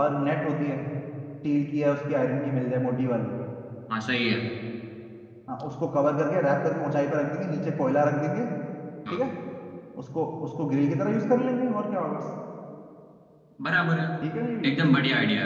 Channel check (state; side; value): identical; both; correlation 1.00